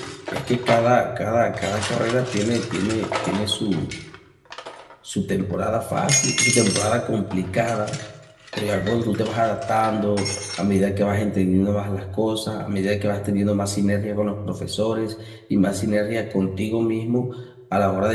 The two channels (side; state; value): both; identical; correlation 1.00